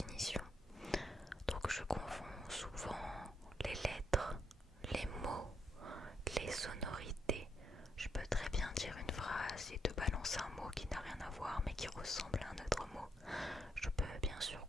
Donc je confonds souvent les lettres, les mots, les sonorités. Je peux très bien dire une phrase et te balancer un mot qui n'a rien à voir mais qui ressemble à un autre mot. Je peux bien sûr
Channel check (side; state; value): both; normal; correlation 0.77